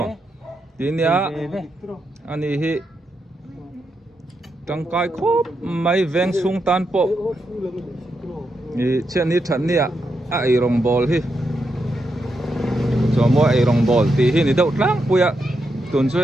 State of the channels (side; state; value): both; normal; correlation 0.83